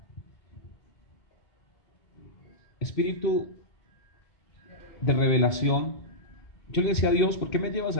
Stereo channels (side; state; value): right; late; 2.8 ms